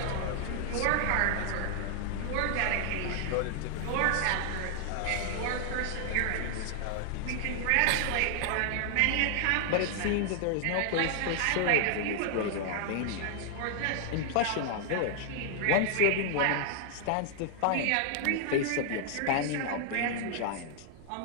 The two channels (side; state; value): both; different; correlation 0.00